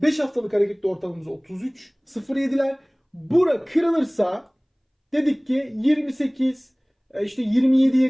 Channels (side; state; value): both; identical; correlation 1.00